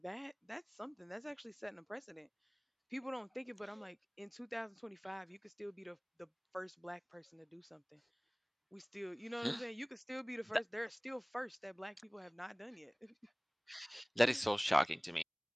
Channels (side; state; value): both; identical; correlation 1.00